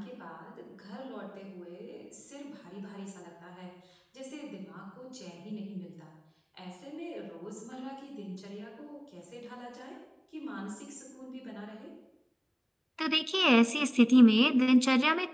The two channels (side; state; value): both; identical; correlation 1.00